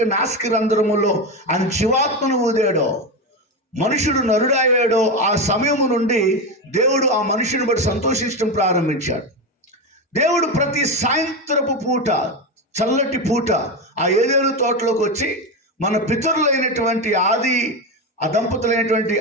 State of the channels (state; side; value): normal; both; correlation 0.15